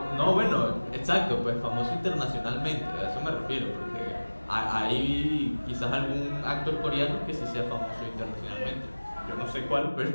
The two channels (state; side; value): inverted; both; correlation -1.00